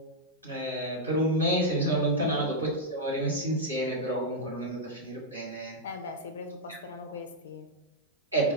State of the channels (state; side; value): normal; both; correlation -0.04